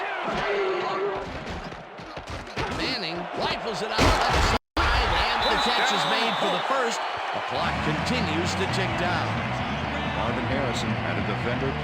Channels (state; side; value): identical; both; correlation 1.00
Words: Manning rifles it out left side, and the catch is made for the first. The clock continues to tick down. Marvin Harrison had a defender